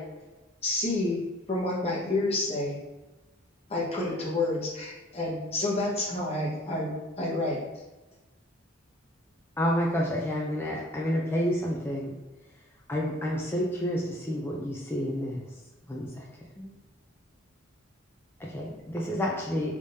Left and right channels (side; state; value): both; normal; correlation 0.53